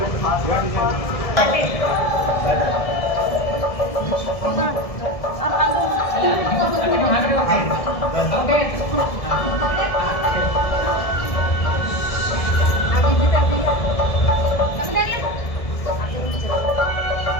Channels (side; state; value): right; late; 1.7 ms